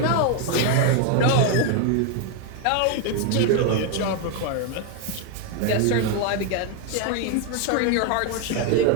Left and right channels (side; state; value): both; different; correlation 0.01